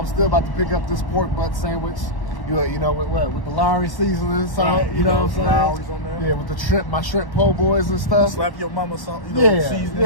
still about to pick up this pork butt sandwich. You know, with the Lowry seasoning, salt, right, you know what I'm saying? Lowry's on there. Yeah, with the my shrimp po' boys and stuff. Slap your mama salt, seasoning.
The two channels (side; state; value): right; late; 1.1 ms